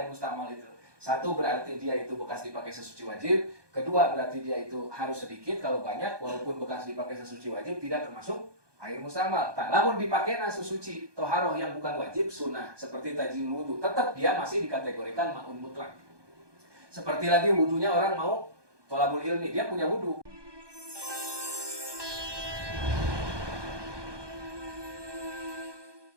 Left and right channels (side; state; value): left; late; 1.2 ms